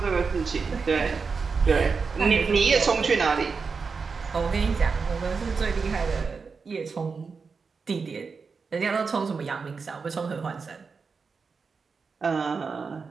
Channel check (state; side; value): quieter; left; 5.0 dB